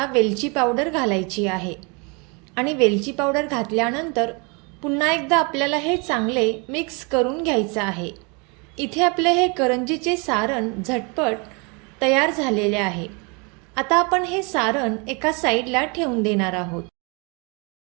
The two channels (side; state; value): left; quieter; 31.7 dB